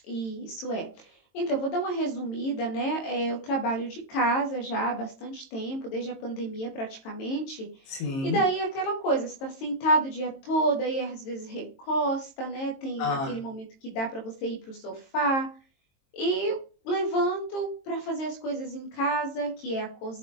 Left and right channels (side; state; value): right; late; 22 ms